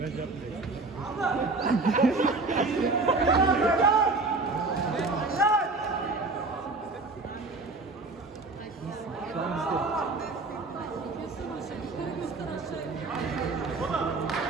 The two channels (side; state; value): left; quieter; 3.5 dB